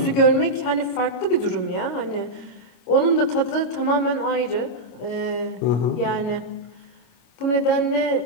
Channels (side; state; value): right; late; 25 ms